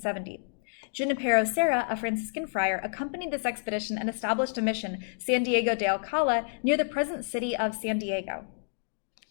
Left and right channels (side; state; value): right; silent; digital silence